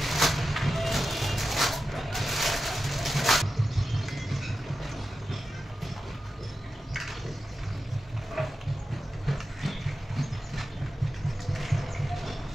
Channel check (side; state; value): both; normal; correlation 0.92